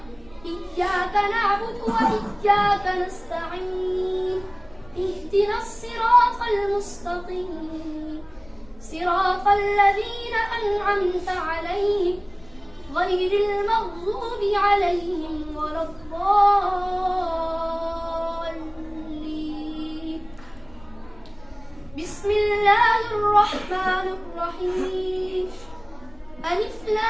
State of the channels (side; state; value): left; noise; rumble, 24 dB below the sound